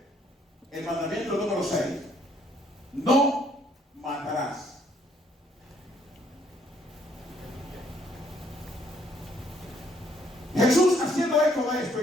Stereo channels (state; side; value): normal; both; correlation 0.67